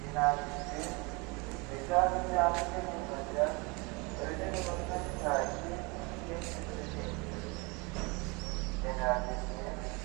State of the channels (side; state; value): left; quieter; 28.3 dB